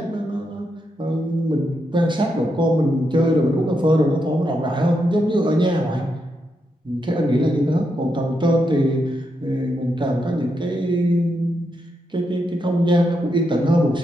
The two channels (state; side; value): normal; both; correlation 0.83